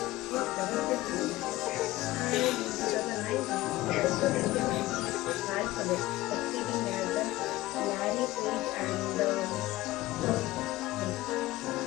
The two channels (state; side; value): quieter; right; 17.3 dB